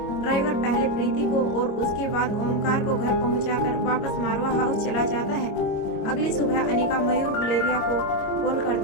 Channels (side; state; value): right; late; 25 ms